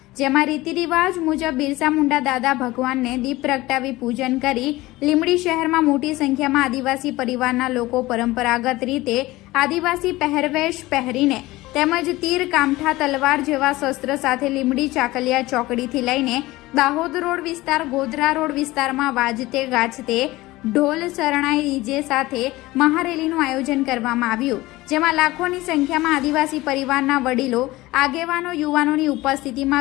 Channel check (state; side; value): quieter; right; 19.1 dB